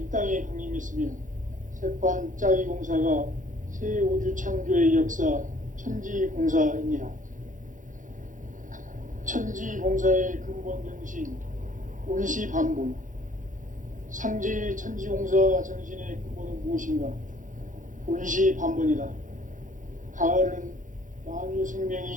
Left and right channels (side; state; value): left; late; 0.38 ms